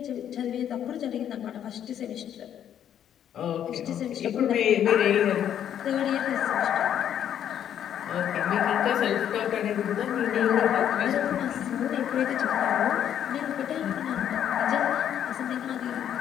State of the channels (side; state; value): right; quieter; 9.9 dB